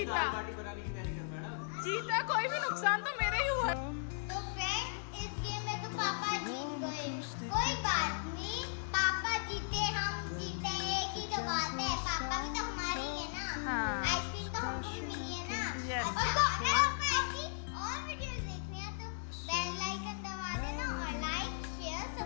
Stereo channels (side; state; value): right; silent; digital silence